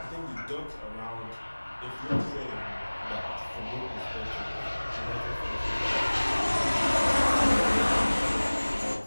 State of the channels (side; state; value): both; inverted; correlation -1.00